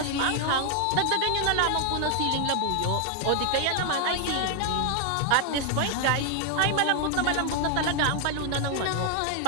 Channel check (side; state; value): both; different; correlation 0.00